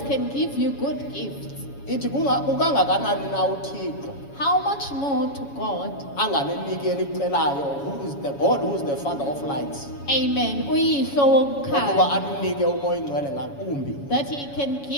can give you good gifts. Ithi ukangakanani na uThixo how much more to God? anganeniki elicelayo, who is the God, who is the Father of lights, Amen. Uyihlo ukuba wokukhanya. aninike umoya oyingcwele ngakumbi. That He can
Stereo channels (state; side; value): late; right; 7.2 ms